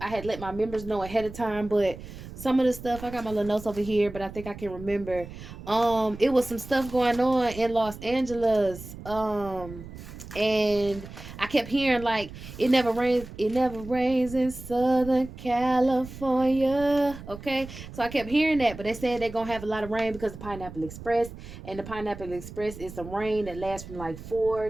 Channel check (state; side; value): noise; right; rumble, 14 dB below the sound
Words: had let my members know ahead of time, but some of the stuff, I got my little notes over here, but I think I can remember. It was some stuff going on in Los Angeles. And I kept hearing like it never rains in Southern California. Okay. So I kept hearing that, but they said they're gonna have a lot of rain because of the Pineapple Express. And the Pineapple Express is some rain that lasts from like 4